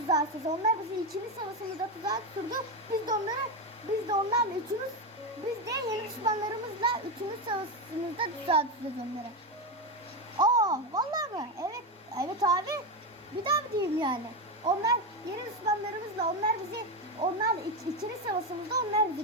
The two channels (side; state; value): both; normal; correlation 0.12